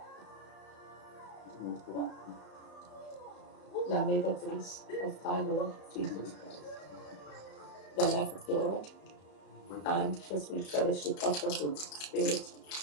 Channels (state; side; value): late; right; 34 ms